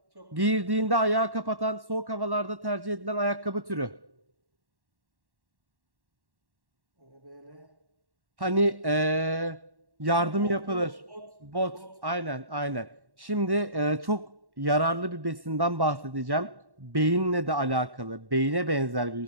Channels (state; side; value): late; left; 1.1 ms